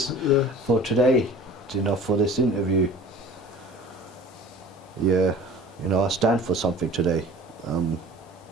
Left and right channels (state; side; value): normal; both; correlation 0.42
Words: for today. You know, for this interview. Yeah, you know, I stand for something today.